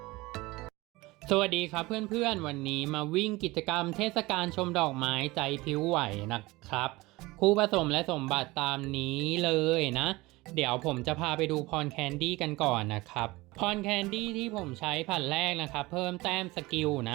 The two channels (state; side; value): quieter; left; 21.2 dB